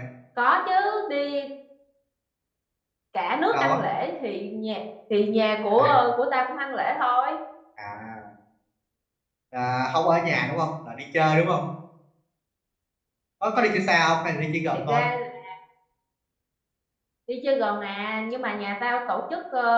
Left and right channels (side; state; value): both; identical; correlation 1.00